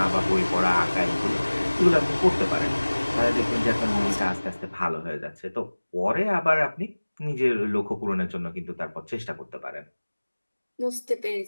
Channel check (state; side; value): inverted; both; correlation -1.00